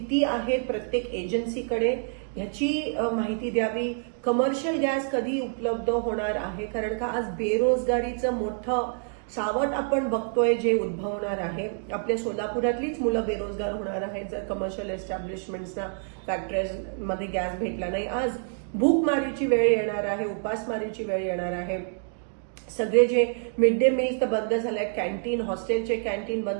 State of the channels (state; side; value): silent; left; 60 dB below the other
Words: आहे प्रत्येक एजन्सीकडे, ह्याची माहिती द्यावी। कमर्शियल गॅस कधी उपलब्ध होणार आहे, कारण का आज बेरोजगारीचं मोठं सावट आपण बघतोय जे उद्भवणार आहे। आपल्या सोलापुरातलीच मुलं बेरोजगार होणार आहेत जर कमर्शियल एस्टॅब्लिशमेंट्सना, फॅक्टरीजमध्ये गॅस भेटला नाही। आज भूकमारीची वेळ येणार आहे, उपासमारीची वेळ येणार आहे। सगळे जे मिड डे मील्स तर बंद झालेत, कॅन्टीन, हॉस्टेलचे कॅन्टीन